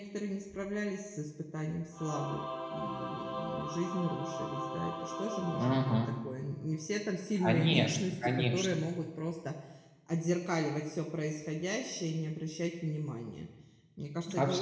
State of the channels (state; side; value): identical; both; correlation 1.00